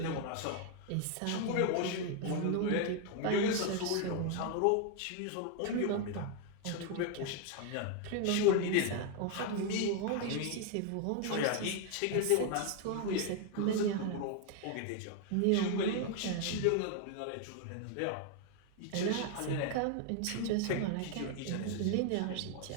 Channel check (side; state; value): both; different; correlation 0.01